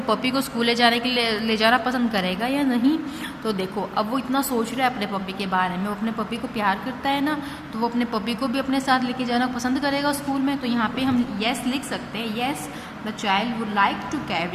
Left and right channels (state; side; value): identical; both; correlation 1.00